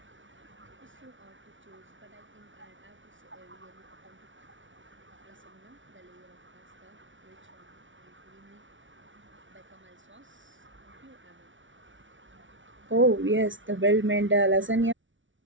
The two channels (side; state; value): left; late; 0.56 ms